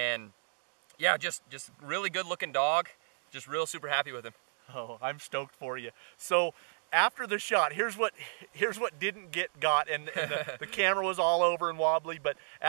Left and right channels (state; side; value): silent; left; digital silence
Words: yeah, just really good looking dog. Just real super happy with him. Oh, I'm stoked for you. So after the shot, here's what didn't get got, and the camera was all over and wobbly. But